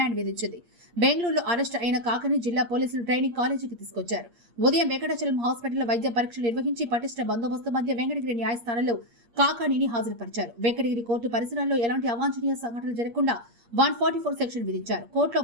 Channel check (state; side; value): late; left; 8.6 ms